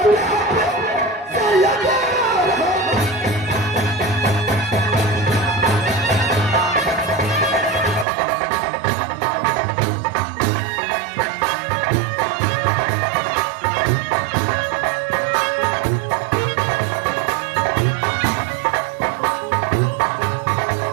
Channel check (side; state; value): left; drops out; at 8.1 s